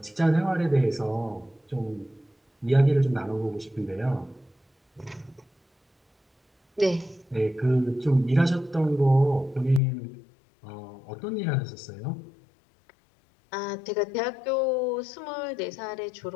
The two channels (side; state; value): right; drops out; at 9.8 s